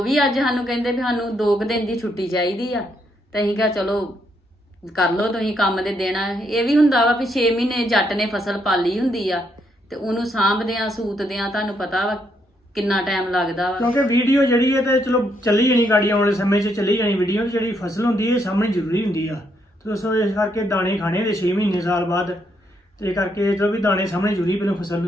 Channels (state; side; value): normal; both; correlation 0.75